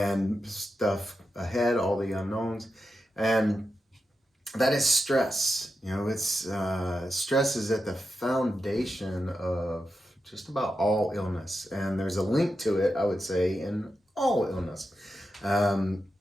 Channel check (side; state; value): both; normal; correlation 0.89